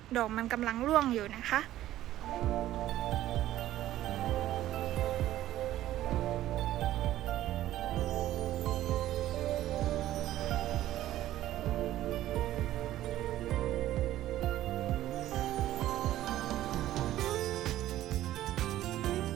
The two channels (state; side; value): quieter; left; 13.9 dB